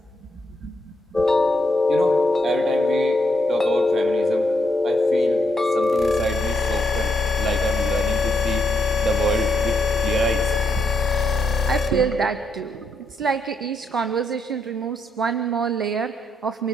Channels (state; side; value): normal; both; correlation 0.78